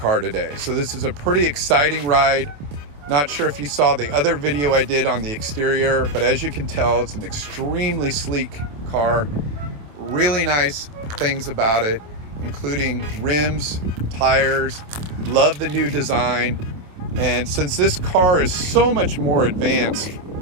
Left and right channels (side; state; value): left; late; 27 ms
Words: today. So this is a pretty exciting ride. Not sure if you saw the other video I did on the exterior, but as you can tell, it's an extremely sleek car. Really nice things about it, including rims, tires. Love the new design. And since this car is so much more advanced